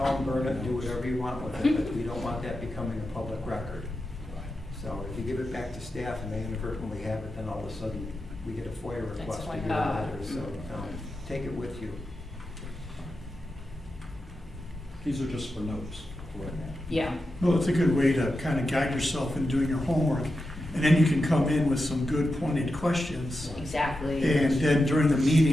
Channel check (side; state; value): both; normal; correlation 0.89